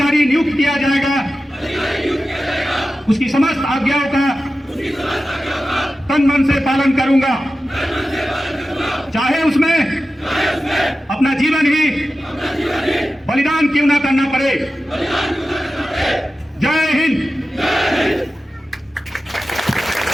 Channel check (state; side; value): normal; both; correlation 0.93